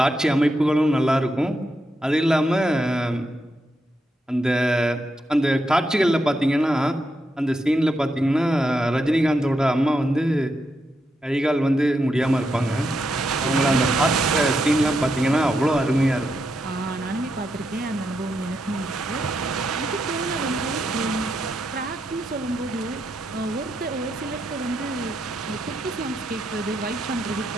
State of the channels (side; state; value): both; normal; correlation 0.83